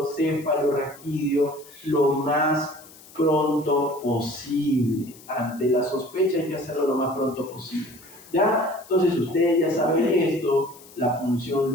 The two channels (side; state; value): left; noise; hiss, 22 dB below the sound